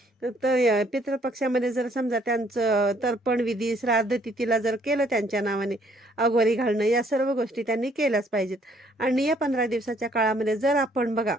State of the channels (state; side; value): normal; both; correlation 0.64